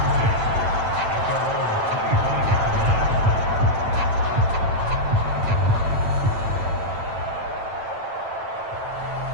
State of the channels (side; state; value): left; late; 9.0 ms